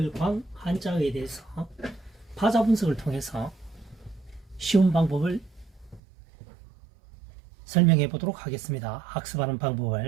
한자에 대해서 파자 분석을 통해서 쉬운 방법을 설명해 보도록 하겠습니다. 학습하는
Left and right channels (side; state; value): left; drops out; at 6.0 s